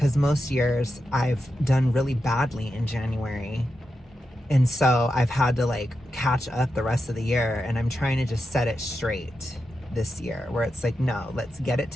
most years I've done really badly in January. And so I've had to like catch up the rest of the year, and I'm trying to just set it straight this year where it's like, no, let's get it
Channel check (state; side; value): normal; both; correlation 0.88